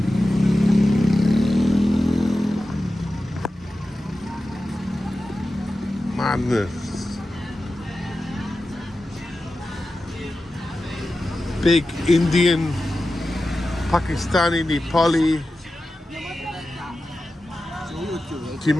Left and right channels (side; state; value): both; normal; correlation 0.93